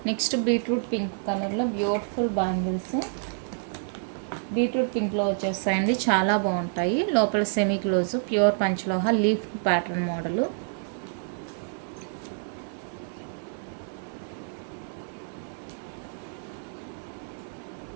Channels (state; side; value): silent; left; digital silence